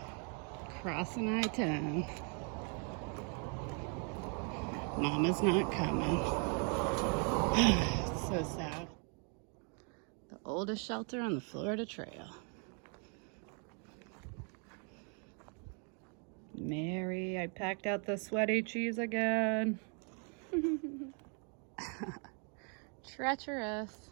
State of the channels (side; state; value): left; quieter; 38.6 dB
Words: Crossing I-10. Mama's not coming. It's so sad. The oldest shelter on the Florida Trail. Mary, I packed out the sweaty cheese again. Treacherous.